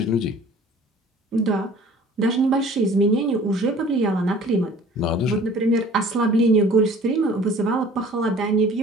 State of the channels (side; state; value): both; normal; correlation 0.49